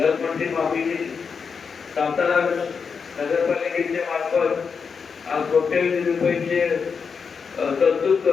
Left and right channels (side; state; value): right; quieter; 5.8 dB